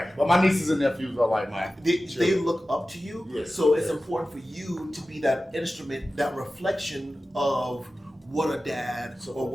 But my nieces and nephews are like mine. They look up to you. So it's important for you to be that instrument, that reflection of what a dad or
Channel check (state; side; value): normal; both; correlation 0.95